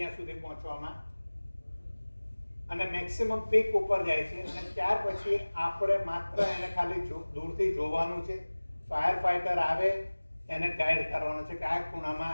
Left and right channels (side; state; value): both; inverted; correlation -1.00